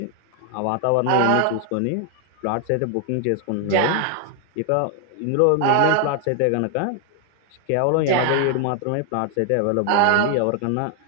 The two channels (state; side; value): different; both; correlation 0.00